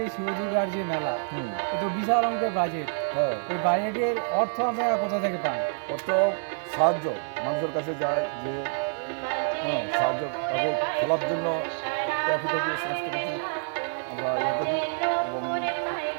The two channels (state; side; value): silent; left; digital silence